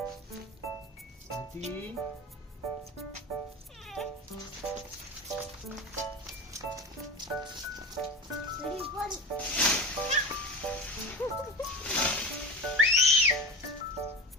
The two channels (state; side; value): normal; both; correlation 0.30